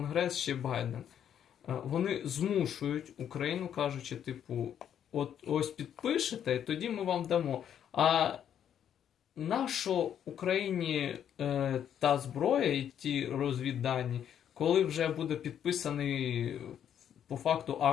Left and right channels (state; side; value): quieter; right; 9.4 dB